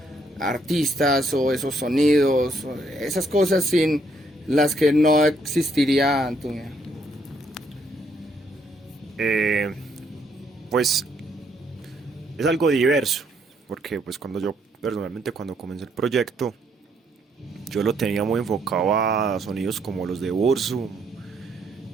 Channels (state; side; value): normal; both; correlation 0.71